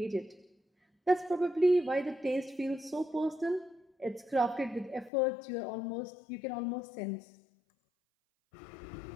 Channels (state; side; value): drops out; right; at 5.1 s